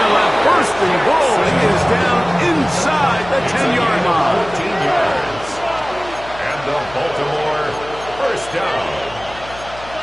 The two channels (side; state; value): left; noise; hum, 17 dB below the sound